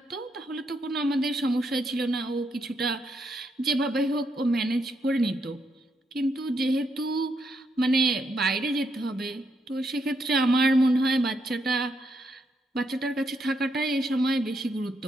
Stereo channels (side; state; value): both; normal; correlation 0.78